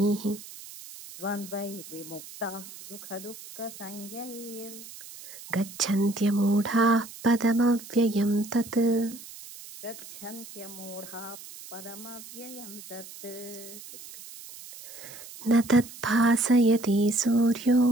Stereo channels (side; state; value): right; noise; hiss, 15 dB below the sound